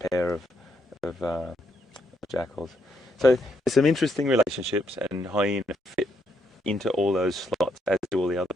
pair of jackals. So there's some interesting relationships, and hyena fit into all those slots, as do all the other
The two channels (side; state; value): both; normal; correlation 0.76